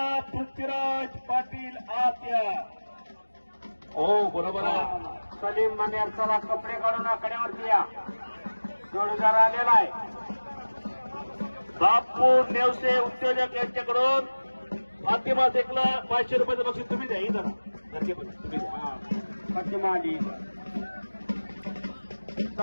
पृथ्वीराज पाटील आत्या हो बरोबर आहे सलीम मनेर चला कपडे काढून आकड्यावरती या जोडीदार आलेला आहे बापू नेवसे उद्योजक यांच्याकडून फातिमा शेखला 500 रुपयाचं बक्षीस तुम्ही द्या इथं तुम्ही द्या फातिमा आली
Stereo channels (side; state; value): both; inverted; correlation -1.00